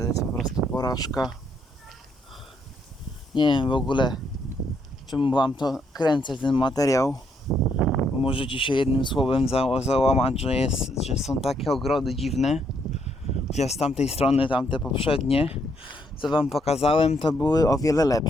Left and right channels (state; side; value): normal; both; correlation 0.73